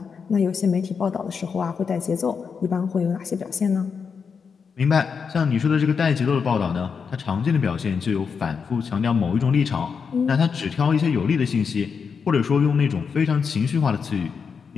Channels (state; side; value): quieter; right; 5.9 dB